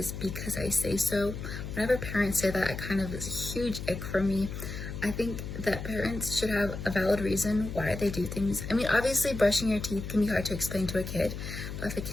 "because I say so." Whenever parents say that, it kind of is a huge ick for me. I think that parents should have a valid reason why they do things. I mean, obviously brushing your teeth can be hard to explain to a kid, but if a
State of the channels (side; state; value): left; noise; hum, 7 dB below the sound